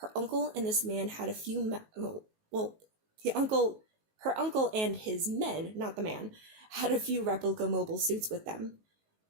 uncle and this man had a few... her uncle and his men, not the man, had a few replica mobile suits with them.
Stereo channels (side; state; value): left; late; 19 ms